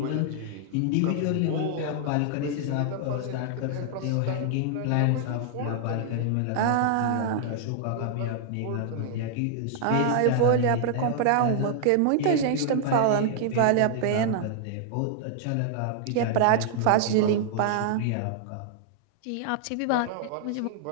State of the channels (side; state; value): both; different; correlation -0.01